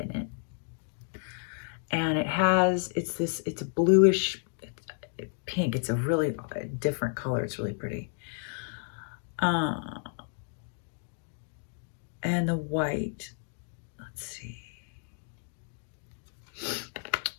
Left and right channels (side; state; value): right; silent; 57 dB below the other